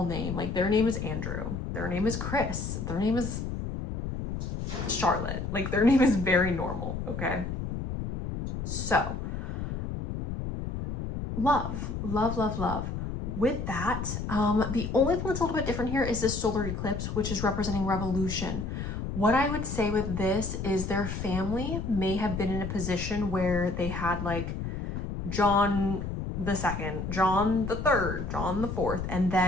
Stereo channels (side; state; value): left; noise; rumble, 4 dB below the sound